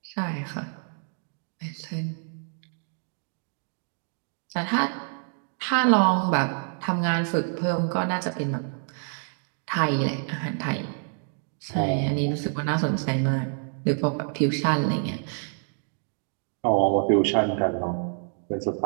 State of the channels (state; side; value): silent; left; 57 dB below the other